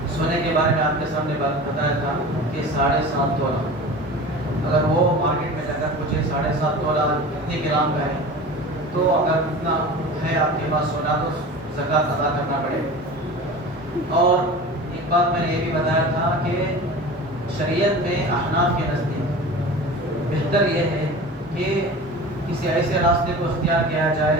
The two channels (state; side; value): normal; both; correlation 0.35